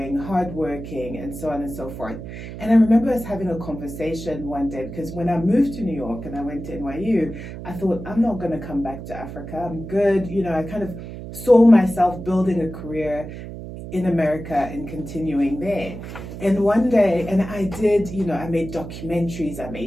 hardworking, and so on and so forth. And I remember us having a conversation one day, because when I moved to New York and I went to NYU, I thought, I'm not going to come back to Africa. I'm good. You know, I kind of saw myself building a career in America and continuing there. And one day, and I did, you know, I made documentaries, I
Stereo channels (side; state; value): right; noise; hum, 10 dB below the sound